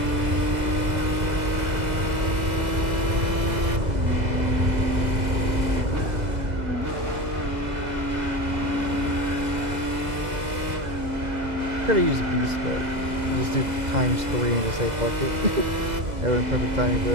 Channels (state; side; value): late; left; 2.0 ms